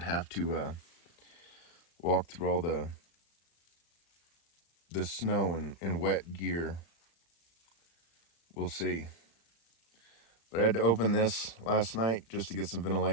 have to walk through all the snow and wet gear. We'll see. But I had to open this last night just to get some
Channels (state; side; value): late; right; 35 ms